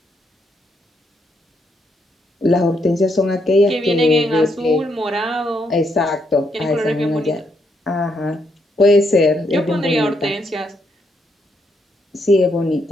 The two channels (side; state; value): both; normal; correlation 0.76